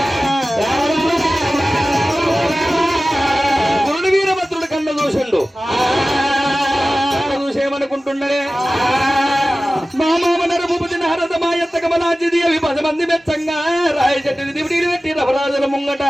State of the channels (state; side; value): normal; both; correlation 0.96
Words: గురుడు వీరభద్రుడు కన్న చూసిండు చూసేమనుకుంటున్నాడే మా మామ నరభూపతి నారద మాయత్త కమలాంజిది అవి 10 మంది మెచ్చంగా రాయ చెట్టుని దివిడీలు పెట్టి రవరాజుల ముంగట